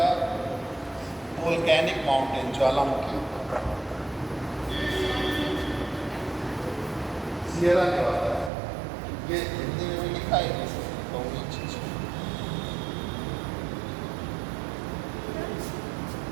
वोल्केनिक माउंटेन, ज्वालामुखी, सियरा नेवाडा। ये हिंदी में भी लिखा है तो ये चीज़।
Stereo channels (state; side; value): drops out; left; at 8.5 s